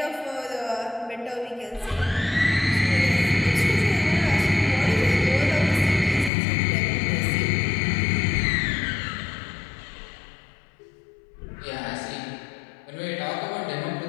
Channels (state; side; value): drops out; right; at 6.3 s